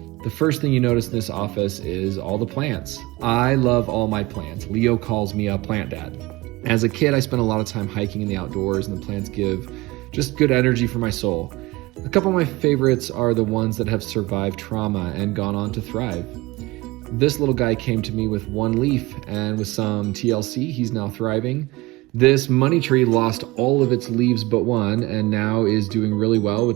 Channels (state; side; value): quieter; left; 21.4 dB